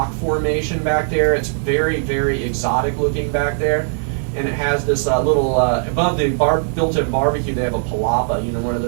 formation back there. It's very, very exotic looking back there. And it has this little, above the built-in barbecue, they have a palapa, one of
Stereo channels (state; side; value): silent; left; digital silence